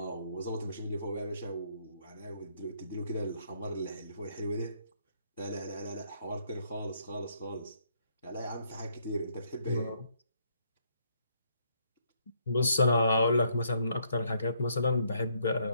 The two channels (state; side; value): inverted; both; correlation -0.71